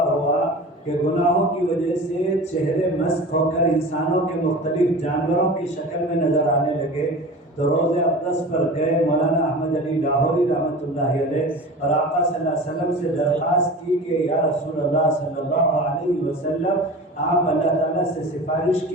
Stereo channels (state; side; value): normal; both; correlation 0.35